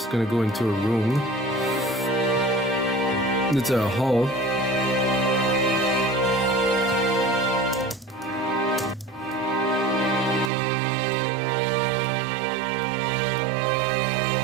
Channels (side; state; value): left; drops out; at 10.5 s